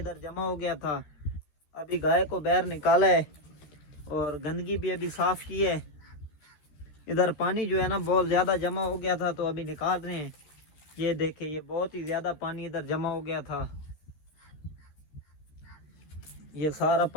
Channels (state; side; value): late; right; 14 ms